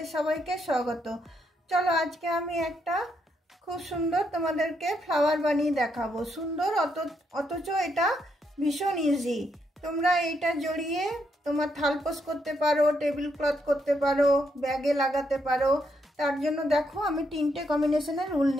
সবাইকে স্বাগত। চলো আজকে আমি একটা খুব সুন্দর তোমাদেরকে ফ্লাওয়ার বানিয়ে দেখাবো। সুন্দর অথচ এটা ভীষণ ইজি। তোমরা এটা জড়িয়ে তোমার থালপোস করতে পারো, টেবিল ক্লথ করতে পারো, ব্যাগে লাগাতে পারো। তার জন্য দেখো আমি তিনটে কম্বিনেশনের উল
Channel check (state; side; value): normal; both; correlation 0.77